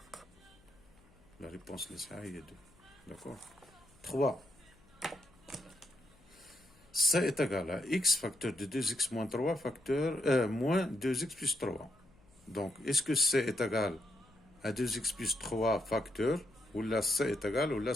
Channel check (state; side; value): noise; left; hum, 29 dB below the sound